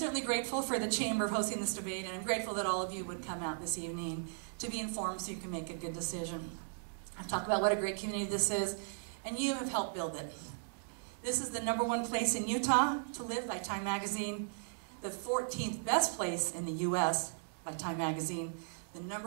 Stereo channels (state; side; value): silent; left; digital silence